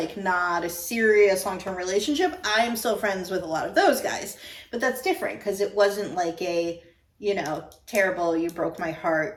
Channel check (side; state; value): both; identical; correlation 1.00